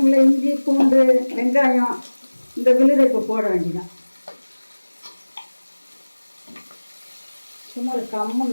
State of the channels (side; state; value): both; inverted; correlation -1.00